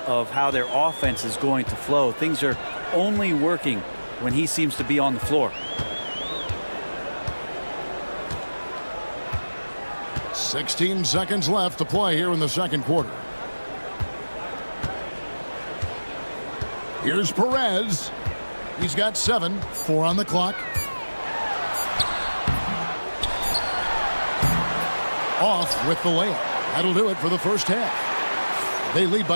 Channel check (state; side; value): inverted; both; correlation -1.00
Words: of how their offense is going to flow. Things are only working when he seems to be on the floor. 16 seconds left to play here in the second quarter. Here's Perez. He's got 7. 4 on the clock. Off with the layup. That'll do it for the first half. They lead